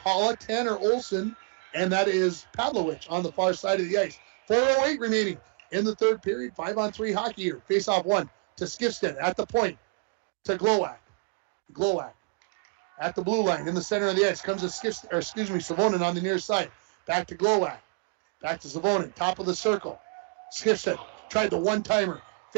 Tanner Olson, and that is Pavlovich on the far side of the ice. 4:08 remaining in the third period. 5-on-3 hockey here. Face-off 1 to Skifstead at the point to Glowak. Glowak at the blue line in the center of the ice. Comes to Savonin on the near side. Back to Glowak. Back to Savonin. Top of the circle. Skifstead tried the one-timer.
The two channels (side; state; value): left; quieter; 35.4 dB